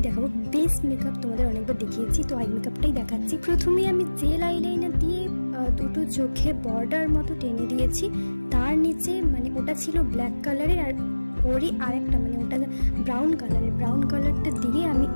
দেখাবো। বেস মেকআপ তোমাদের অনেকবার দেখিয়েছি, তো আই মেকআপটাই দেখাচ্ছি। প্রথমে আমি জেল আইলাইনার দিয়ে দুটো চোখে বর্ডার মতো টেনে দিয়েছি। তার নিচে মানে ওটা ছিল ব্ল্যাক কালারের, আর ওরই আরেকটা মানে ওটা ব্রাউন কালারের। ব্রাউন কালারটা দিয়ে আমি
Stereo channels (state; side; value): inverted; both; correlation -1.00